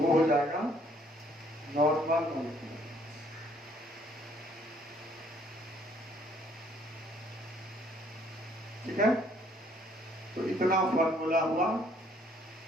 हो जाएगा नॉर्मल मोलेक्युलर। ठीक है, तो इतना फॉर्मूला हुआ।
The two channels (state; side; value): normal; both; correlation 0.63